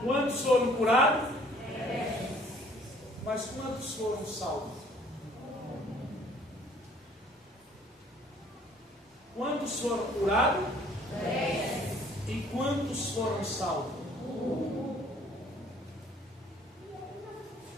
Quantos foram curados? 10. Mas quantos foram salvos? Quantos foram curados? 10. E quantos foram salvos? 1.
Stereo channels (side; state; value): both; normal; correlation 0.57